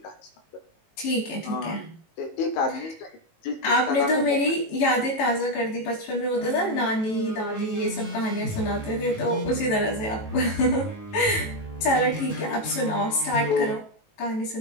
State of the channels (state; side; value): late; right; 19 ms